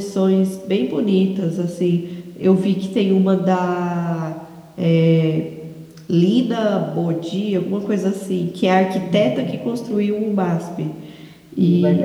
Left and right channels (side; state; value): both; identical; correlation 1.00